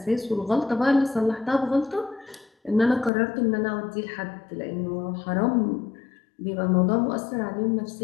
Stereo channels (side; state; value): right; drops out; at 3.1 s